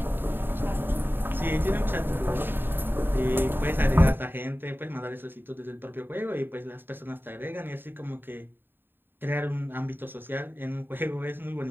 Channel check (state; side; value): late; left; 0.097 ms